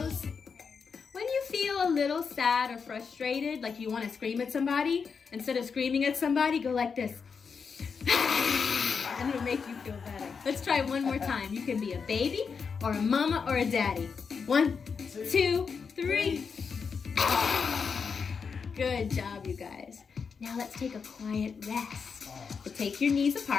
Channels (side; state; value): right; quieter; 5.7 dB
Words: When you feel a little sad or frustrated, like you want to scream at somebody, instead of screaming at somebody, go like this. And it'll make you feel better. Let's try one more time. You can be a baby, or a mama, or a daddy. 1, 2, 3. Good job, you guys. Now let's take a quiet rest. So take your knees